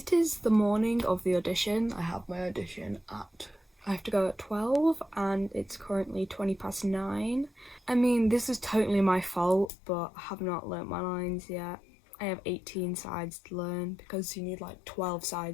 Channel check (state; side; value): drops out; right; at 9.7 s